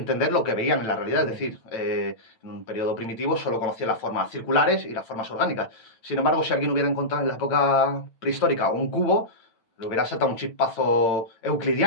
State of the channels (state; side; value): late; right; 8.9 ms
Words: lo que veían en la realidad. Es decir, en un periodo primitivo solo conocían las formas circulares y las formas orgánicas. Sin embargo, si alguien hubiera encontrado en la época prehistórica un cubo, le hubiera saltado un chispazo